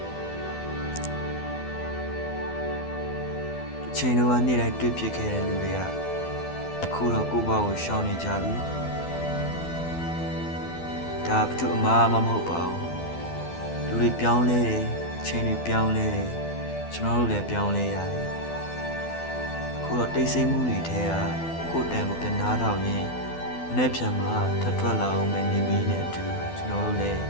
ချိန်တော့နေ့တိုင်းတွေ့ဖြစ်ခဲ့တဲ့လူတွေကအခုတော့ကိုယ့်ဘဝကိုရှောင်နေကြပြီဒါဘယ်သူအမှားမှမဟုတ်ပါဘူးလူတွေပြောင်းလဲတယ်ချိန်တွေပြောင်းလဲတယ်ကျွန်တော်တို့လည်းပြောင်းလဲရတယ်အခုတော့တိတ်ဆိတ်မှုတွေထဲကကိုယ်တန်ကိုပြန်နားထောင်ရင်းမနေ့ပြန်မှာထပ်ထွက်လာအောင်မယ်နေမီးနဲ့အတူကျွန်တော်တို့လည်း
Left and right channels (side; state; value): right; late; 12 ms